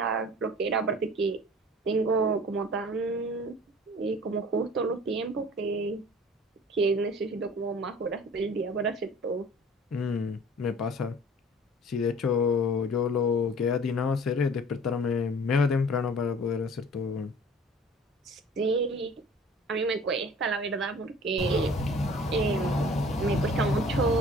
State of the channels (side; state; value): both; normal; correlation 0.47